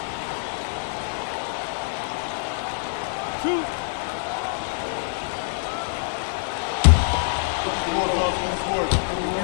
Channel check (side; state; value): right; silent; digital silence